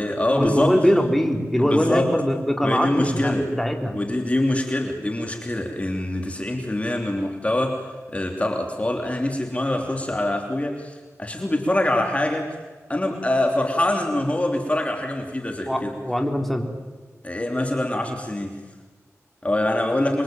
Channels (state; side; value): normal; both; correlation 0.94